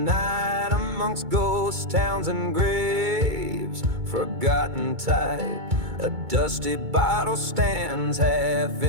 amongst ghost towns and graves, forgotten type. A dusty bottle stands half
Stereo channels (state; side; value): late; left; 2.2 ms